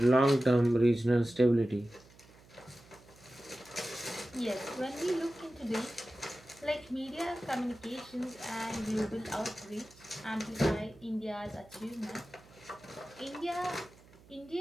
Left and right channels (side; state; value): right; noise; hum, 25 dB below the sound